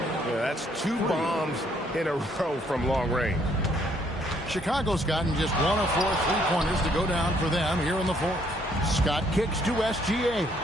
that's 2 bombs in a row from long range. Chicago's gotten just 1 of 4 three-pointers to go down for them here in the fourth. Scott kicks to SGA.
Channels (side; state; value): both; normal; correlation 0.67